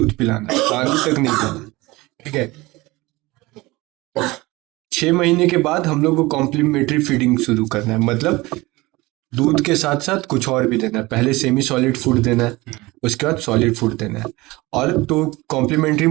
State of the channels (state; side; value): quieter; left; 21.2 dB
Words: पिलाना, पानी तक नहीं देना। ठीक है, 6 महीने के बाद हम लोग को कॉम्प्लीमेंट्री फीडिंग शुरू करना है, मतलब दूध के साथ साथ कुछ और भी देना है। पहले सेमी सॉलिड फूड देना है, उसके बाद सॉलिड फूड देना है। और तो कॉम्प्लीमेंट्री